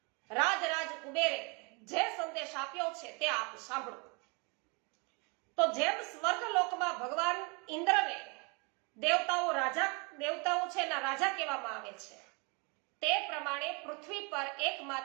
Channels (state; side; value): quieter; left; 31.2 dB